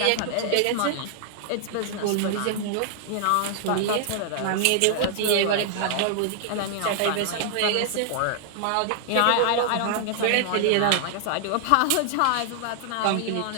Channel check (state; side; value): different; both; correlation 0.00